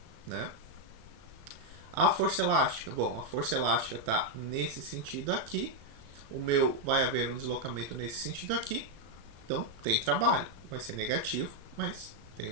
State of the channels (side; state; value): left; late; 36 ms